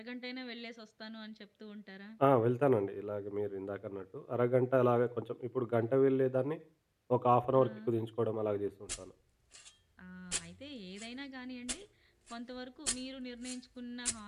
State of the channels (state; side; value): identical; both; correlation 1.00